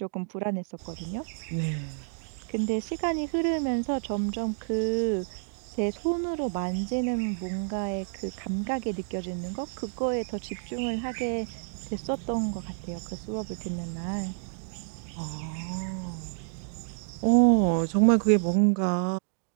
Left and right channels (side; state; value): left; silent; digital silence